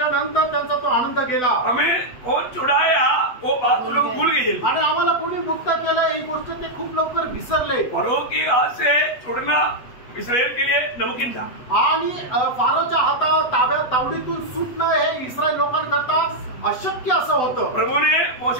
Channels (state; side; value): late; right; 8.1 ms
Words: त्यांचा तो आनंद गेला. हमें कौन छुड़ाया वो बात लोग भूल गए. आणि आम्हाला कोणी मुक्त केलं ही गोष्ट ते खूप लवकर विसरले. फरो की हाथ से छुड़ना इस्राएल के लिए नामुमकिन था. आणि फारोच्या हाता तावडीतून सुटणं हे इस्रायल लोकांकरता अशक्य असं होतं. प्रभु ने